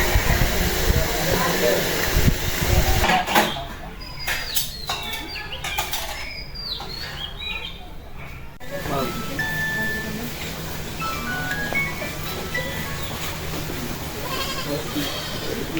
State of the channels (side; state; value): both; identical; correlation 1.00